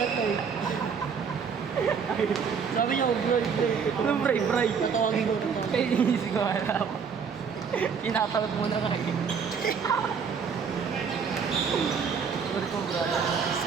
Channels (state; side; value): quieter; left; 6.3 dB